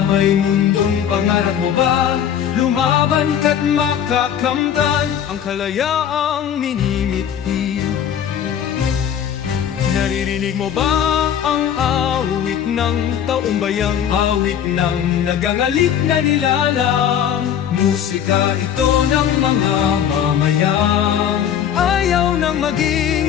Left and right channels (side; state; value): right; quieter; 9.1 dB